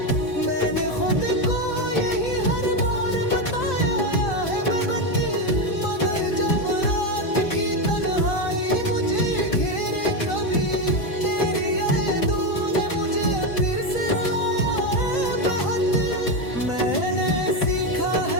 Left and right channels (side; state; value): right; late; 3.9 ms